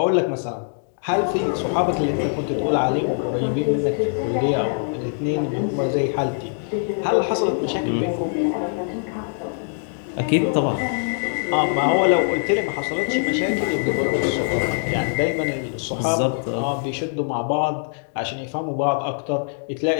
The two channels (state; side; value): silent; right; digital silence